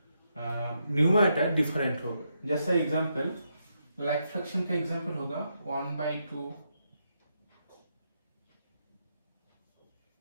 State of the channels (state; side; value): inverted; both; correlation -0.81